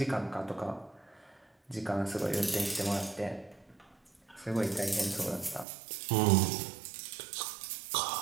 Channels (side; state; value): left; drops out; at 5.7 s